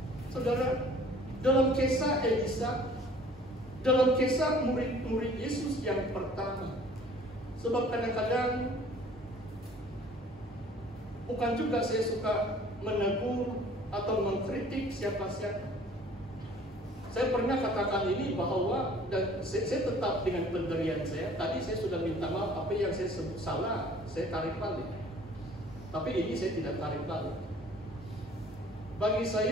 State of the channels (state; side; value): normal; both; correlation 0.52